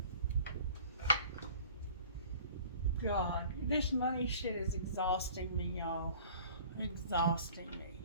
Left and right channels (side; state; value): both; inverted; correlation -0.47